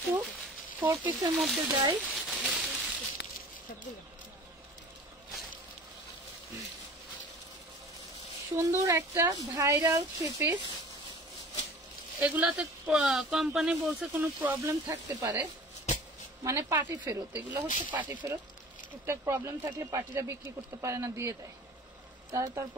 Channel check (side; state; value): both; normal; correlation 0.43